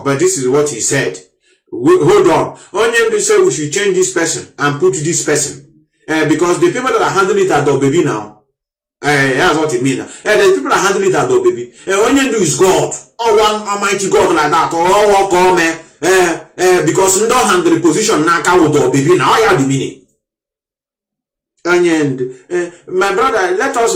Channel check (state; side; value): identical; both; correlation 1.00